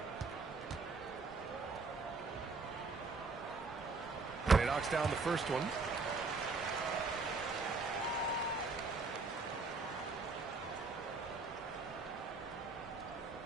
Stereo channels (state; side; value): quieter; left; 3.9 dB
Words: And he knocks down the first one.